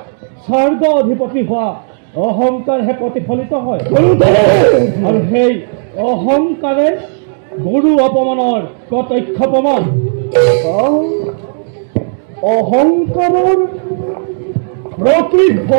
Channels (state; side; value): silent; left; digital silence